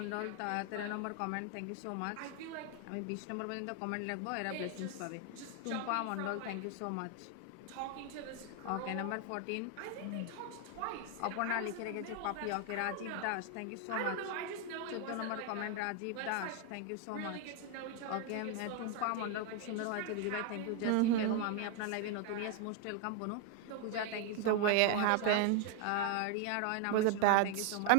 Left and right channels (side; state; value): both; different; correlation 0.01